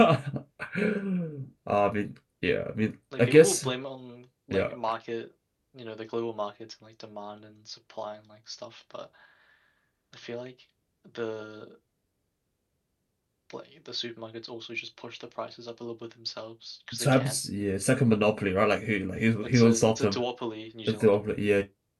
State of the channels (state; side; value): identical; both; correlation 1.00